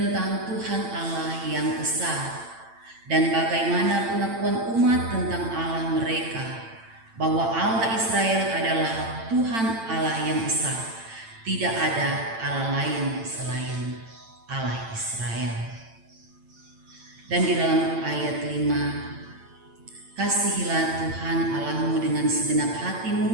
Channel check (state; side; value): late; left; 8.9 ms